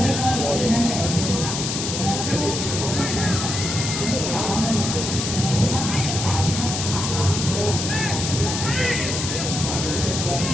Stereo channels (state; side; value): noise; left; hiss, 3 dB below the sound